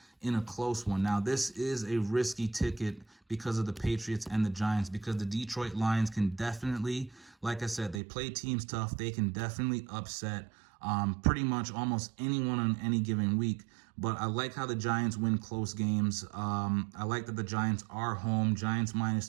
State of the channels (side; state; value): left; drops out; at 8.0 s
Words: in a close one. Now, this is a risky ticket because of the Patriots and the Giants, because the Detroit Lions can definitely, like I said, they play teams tough. They can definitely upset pretty much almost anyone on any given week. But I like how the Giants win close games. I like that the Giants are home. Giants